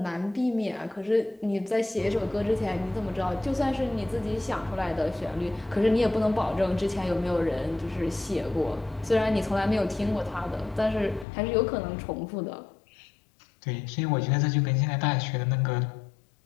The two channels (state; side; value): drops out; right; at 11.2 s